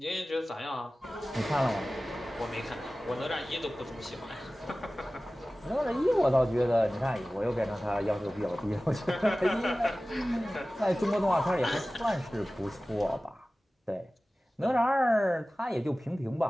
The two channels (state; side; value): normal; both; correlation 0.97